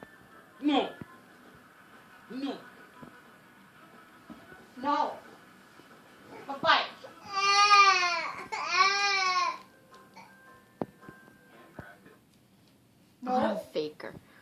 No. No. No. Bye-bye. What a No. faker.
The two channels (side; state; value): both; identical; correlation 1.00